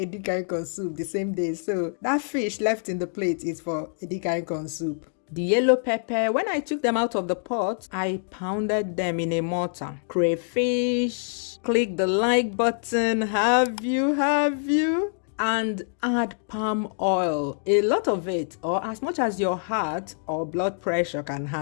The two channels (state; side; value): silent; right; digital silence